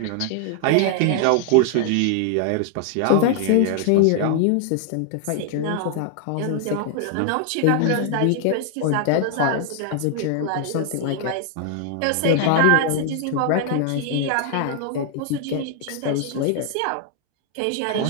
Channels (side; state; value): both; different; correlation 0.00